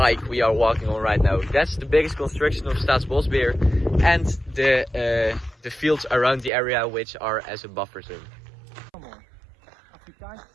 we are walking on right now. That's the biggest construction of Staatsbosbeheer, and the fields around the area, which are as a buffer zone.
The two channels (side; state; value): left; drops out; at 6.5 s